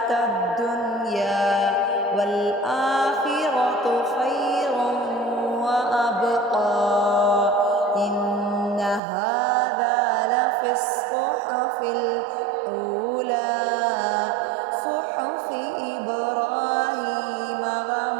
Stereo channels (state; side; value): drops out; left; at 9.0 s